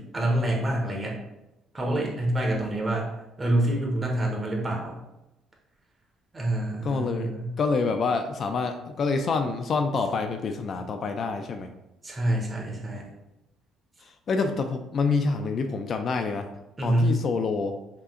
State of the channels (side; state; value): both; normal; correlation 0.76